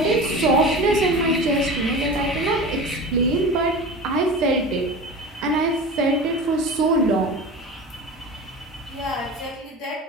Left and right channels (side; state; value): both; normal; correlation 0.32